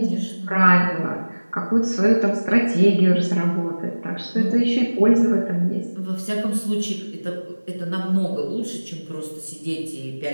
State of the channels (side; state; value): both; inverted; correlation -1.00